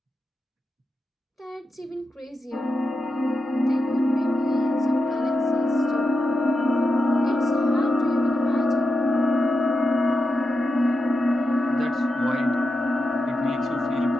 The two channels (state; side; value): normal; both; correlation 0.88